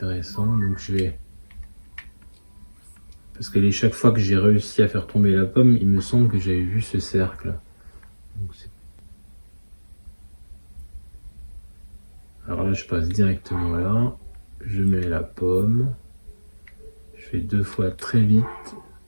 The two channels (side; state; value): both; inverted; correlation -1.00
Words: donc je vais... Parce que chaque fois que j'ai réussi à faire tomber la pomme, il me semble que j'avais vu ce cercle. Donc, alors là, je passe directement là. Je mets la pomme. Je fais 2 fois très vite.